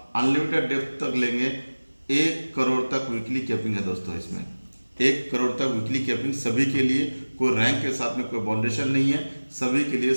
अनलिमिटेड डेप्थ तक लेंगे, 1 करोड़ तक वीकली कैपिंग है दोस्तों। इसमें 1 करोड़ तक वीकली कैपिंग सभी के लिए, कोई रैंक के साथ में कोई बाउंडेशन नहीं है, सभी के लिए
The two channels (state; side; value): inverted; both; correlation -1.00